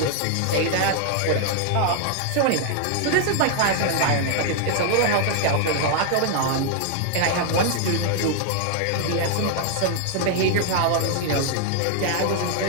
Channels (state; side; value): different; both; correlation 0.00